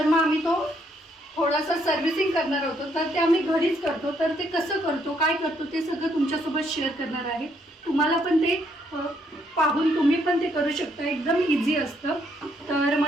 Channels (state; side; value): normal; both; correlation 0.71